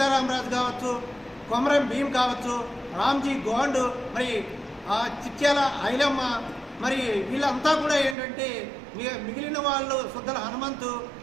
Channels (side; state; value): left; drops out; at 8.2 s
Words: కావచ్చు, కొమరం భీం కావచ్చు, రామ్జీ గోండ్, మరి చిట్యాల ఐలమ్మ, మరి వీళ్ళంతా కూడా ఏంటంటే మిగిలిన వాళ్ళు సుద్దల హనుమంతు